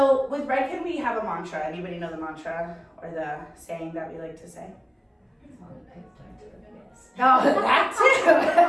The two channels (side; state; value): both; identical; correlation 1.00